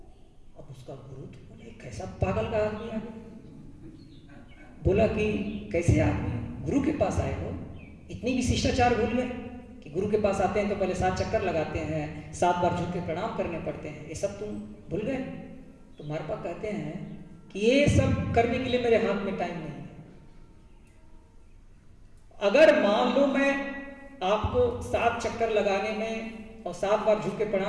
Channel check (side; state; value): both; identical; correlation 1.00